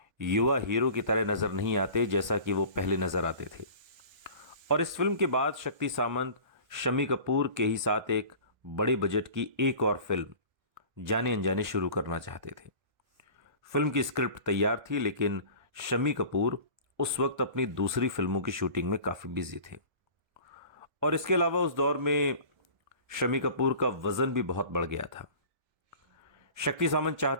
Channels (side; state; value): left; late; 1.3 ms